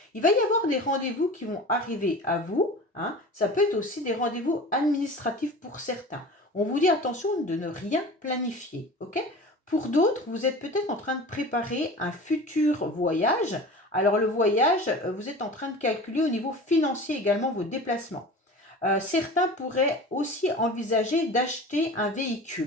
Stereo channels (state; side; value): normal; both; correlation 0.37